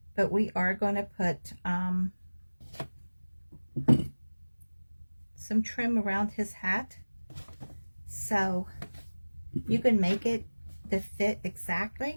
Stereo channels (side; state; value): both; inverted; correlation -1.00